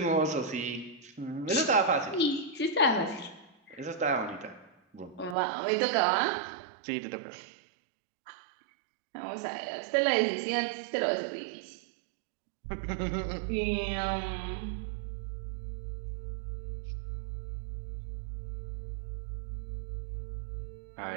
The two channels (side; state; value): left; drops out; at 5.4 s